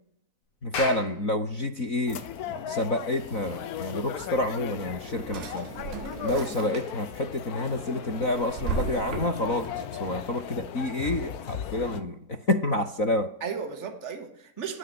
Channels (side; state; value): right; late; 4.0 ms